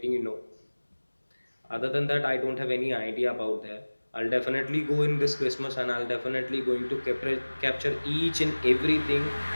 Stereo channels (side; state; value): both; inverted; correlation -1.00